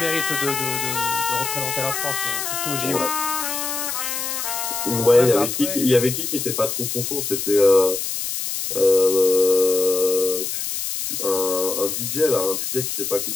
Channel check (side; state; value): left; noise; hiss, 3 dB below the sound